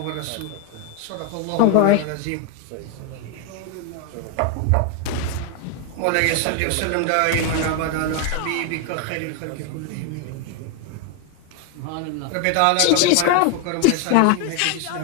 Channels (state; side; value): different; both; correlation 0.01